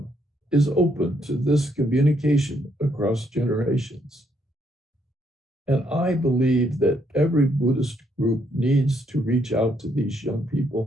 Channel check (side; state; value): both; normal; correlation 0.73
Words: is open to this communication across generations. And I believe that every Buddhist group needs to reach out to these young